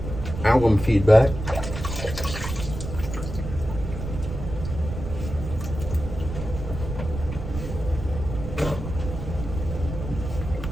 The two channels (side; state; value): right; noise; rumble, 7 dB below the sound